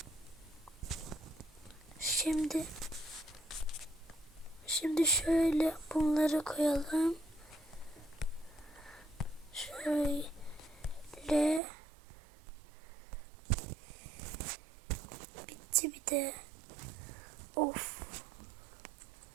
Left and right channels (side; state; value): left; drops out; at 11.6 s